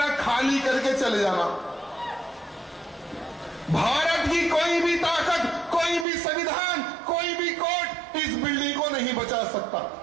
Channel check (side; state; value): left; drops out; at 6.1 s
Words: खाली करके चले जाना। भारत की कोई भी ताकत, कोई भी संविधान, कोई भी कोर्ट इस बिल्डिंग को नहीं बचा सकता।